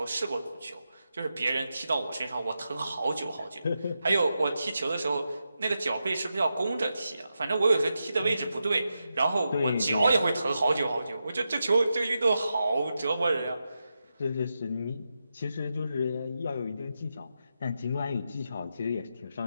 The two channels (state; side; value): inverted; both; correlation -0.88